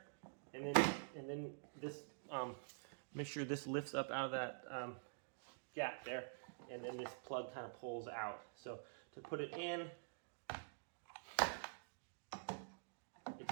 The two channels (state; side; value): silent; left; digital silence